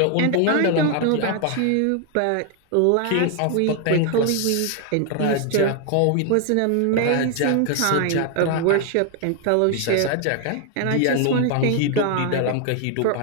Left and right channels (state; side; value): different; both; correlation 0.01